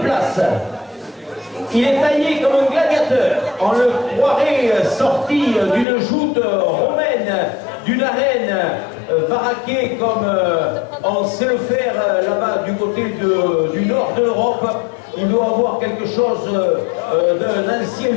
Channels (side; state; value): right; drops out; at 5.9 s